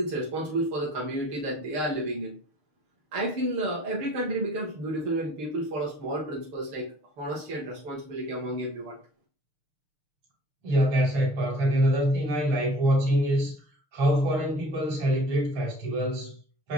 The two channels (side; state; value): left; late; 6.6 ms